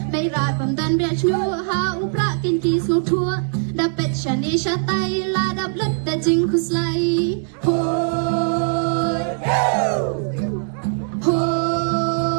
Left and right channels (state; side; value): silent; left; digital silence